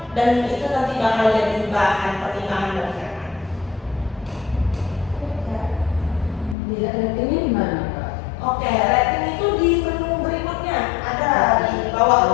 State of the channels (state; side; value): drops out; right; at 6.6 s